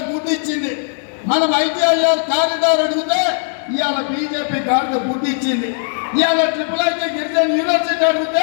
గుడ్డి ఇచ్చింది. మనం ఐటీఐఆర్ కారిడార్ అడిగితే ఇవాళ బీజేపీ గాడిద గుడ్డి ఇచ్చింది. ఇవాళ ట్రిపుల్ గిరిజన యూనివర్సిటీ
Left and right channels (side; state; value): right; silent; digital silence